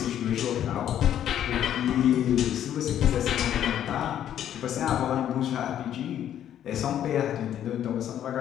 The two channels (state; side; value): quieter; right; 10.6 dB